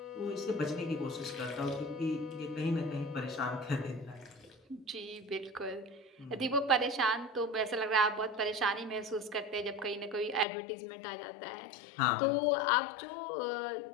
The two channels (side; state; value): right; drops out; at 10.5 s